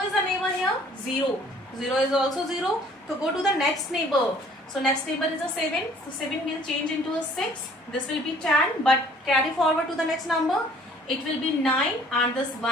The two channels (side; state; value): both; normal; correlation 0.56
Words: the neighbor here? 0. 0 is also 0. So go to the next neighbor. So next neighbor is a 7. So 7 will change into a 6. This will be 10. But carry forward to the next number. It will be 9 and this